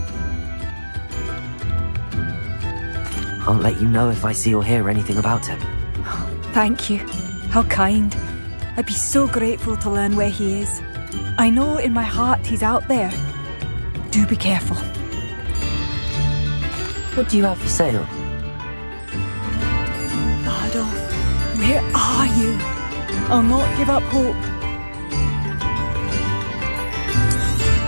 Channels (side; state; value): both; inverted; correlation -1.00